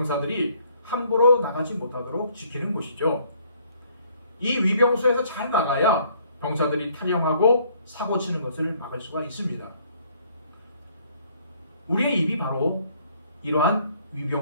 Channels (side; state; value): both; inverted; correlation -0.63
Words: 함부로 나가지 못하도록 지키는 곳이죠. 이 위병소에서 잘 나가야 병사들이 탈영하고 사고치는 것을 막을 수가 있습니다. 우리의 입이 바로 이러한